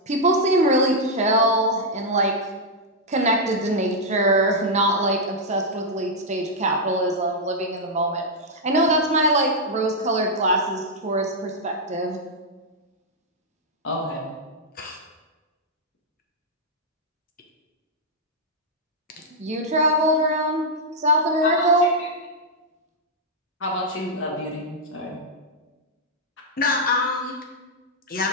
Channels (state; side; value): normal; both; correlation -0.04